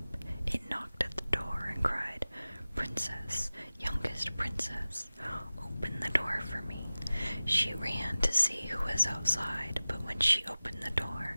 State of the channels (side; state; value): both; inverted; correlation -0.97